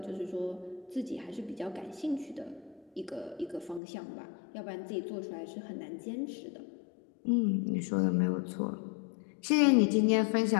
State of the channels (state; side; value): drops out; right; at 3.8 s